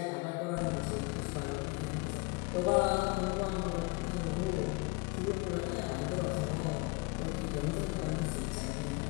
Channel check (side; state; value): right; quieter; 28.0 dB